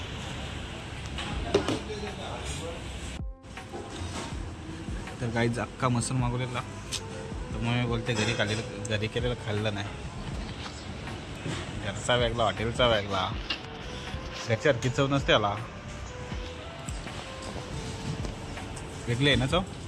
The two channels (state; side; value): identical; both; correlation 1.00